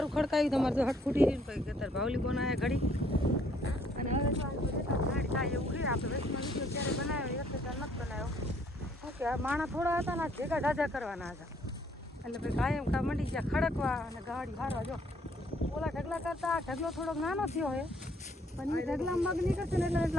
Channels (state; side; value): normal; both; correlation 0.65